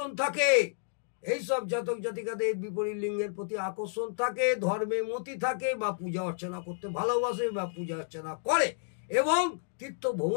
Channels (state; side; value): silent; right; digital silence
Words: থাকে। এইসব জাতক জাতিকাদের বিপরীত লিঙ্গের প্রতি আকর্ষণ থাকে, ধর্মে মতি থাকে বা পূজা অর্চনা করতে ভালোবাসে বা পূজা অর্চনা করে এবং তীর্থ